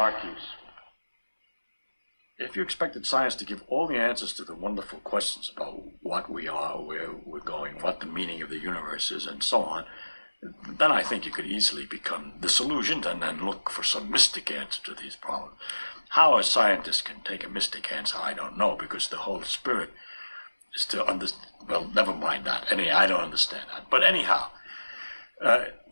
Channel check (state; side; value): inverted; both; correlation -1.00